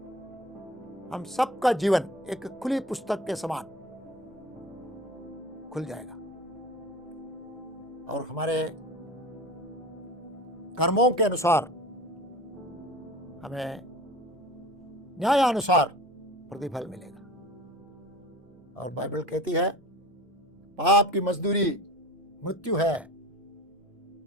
हम सबका जीवन एक खुली पुस्तक के समान खुल जाएगा और हमारे कर्मों के अनुसार हमें न्यायानुसार प्रतिफल मिलेगा। और बाइबल कहती है, पाप की मजदूरी मृत्यु है,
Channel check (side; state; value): both; normal; correlation 0.37